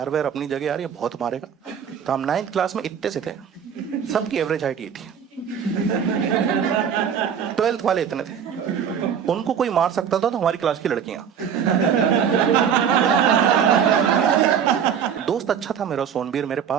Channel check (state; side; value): quieter; left; 7.9 dB